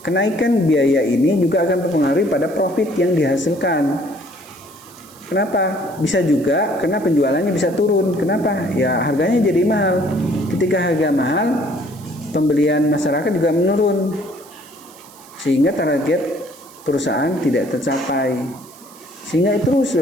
Kenaikan biaya ini juga akan mempengaruhi pada profit yang dihasilkan. Kenapa? Bisa juga karena penjualannya bisa turun. Kenapa? Ya harganya jadi mahal. Ketika harga mahal, pembelian masyarakat juga menurun. Sehingga target perusahaan tidak tercapai. Sehingga itu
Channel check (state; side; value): noise; right; hiss, 22 dB below the sound